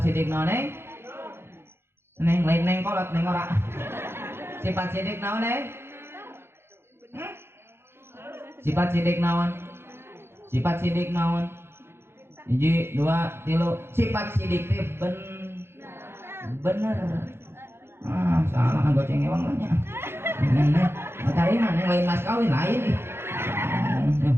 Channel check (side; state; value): left; late; 0.12 ms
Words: naon neng? Neng lain neng kolot neng ora. Sifat sidik naon neng? Sifat sidik naon? Hiji, 2, 3. Sifat sidik teh bener. Ah, salah goceng ewang lah nya. Matarina neng lain mas kawin lain.